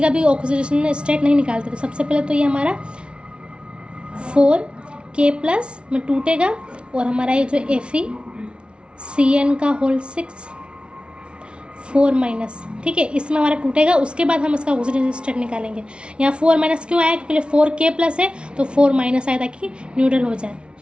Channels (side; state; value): left; late; 0.058 ms